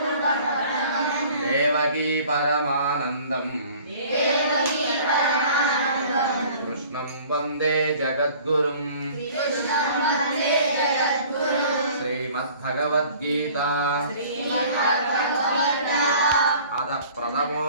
देवकी परमानन्दं कृष्णं वन्दे जगद्गुरुं। श्रीमद्भगवद्गीता अथ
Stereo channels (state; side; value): inverted; both; correlation -0.50